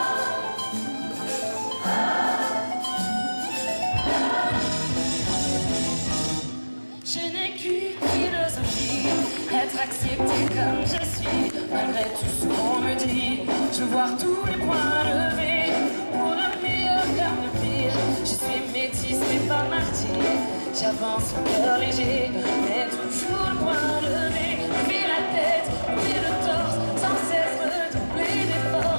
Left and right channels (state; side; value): inverted; both; correlation -1.00